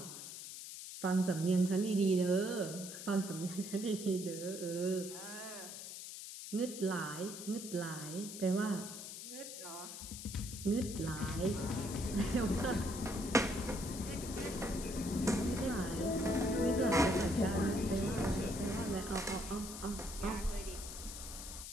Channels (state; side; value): noise; left; hiss, 9 dB below the sound